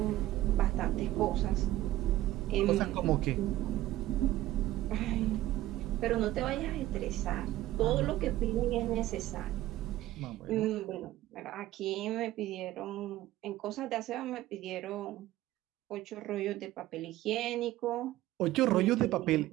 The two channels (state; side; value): quieter; left; 15.4 dB